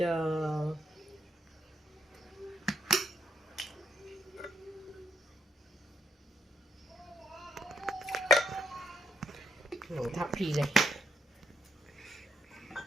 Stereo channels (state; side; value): normal; both; correlation 0.75